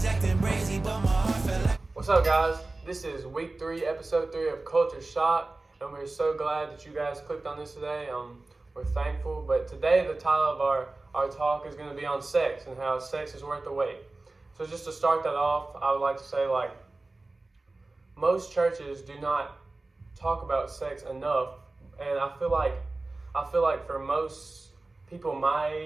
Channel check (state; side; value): quieter; left; 3.2 dB